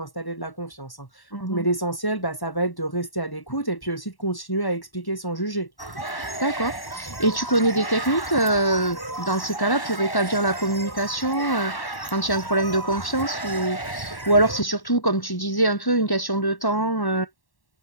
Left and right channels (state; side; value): late; right; 1.1 ms